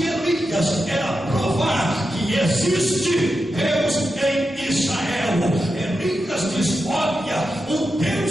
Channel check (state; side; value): normal; both; correlation 0.89